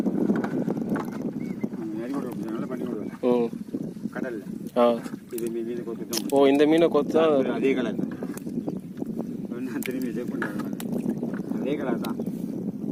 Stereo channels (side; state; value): both; identical; correlation 1.00